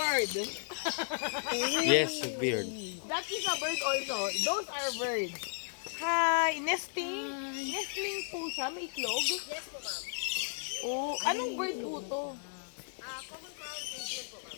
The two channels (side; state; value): right; silent; digital silence